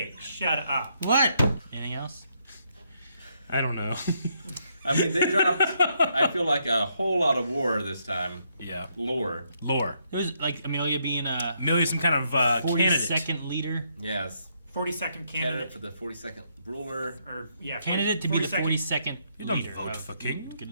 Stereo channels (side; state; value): both; inverted; correlation -0.75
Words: shut up. What? Anything else? I don't know. I mean, they dropped, I feel like, a whole lot of war this time. Yeah. Lore. Lore. It was like Amelia being a Amelia's some kind of candidate. 42nd leader. Yes. 42nd Candidate candidate. for the 42nd ruler. Or, yeah, Candidate to be the 42nd You don't leader. vote for king.